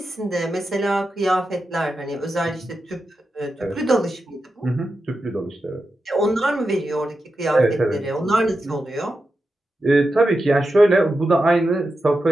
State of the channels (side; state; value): both; normal; correlation 0.90